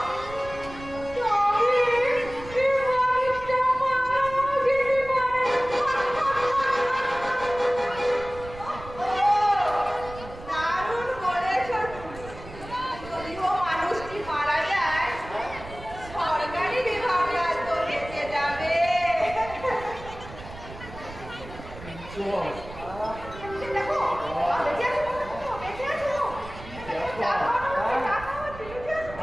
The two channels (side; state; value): right; noise; rumble, 15 dB below the sound